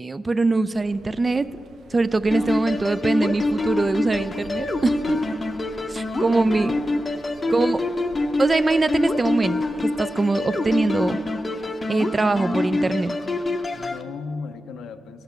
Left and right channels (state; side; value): normal; both; correlation 0.92